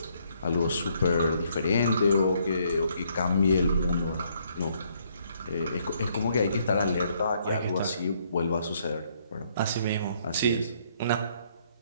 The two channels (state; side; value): inverted; both; correlation -0.68